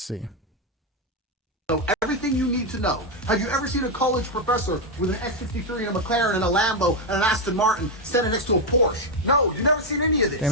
Know everything you need to know. Have you ever seen a college professor with an X63 and a McLaren and a Lambo and an Aston Martin standing next to a Porsche? No, you've never seen any of this. Damn,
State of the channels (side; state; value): both; normal; correlation 0.04